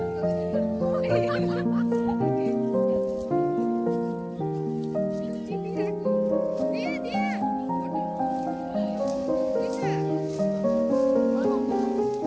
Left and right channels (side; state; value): both; identical; correlation 1.00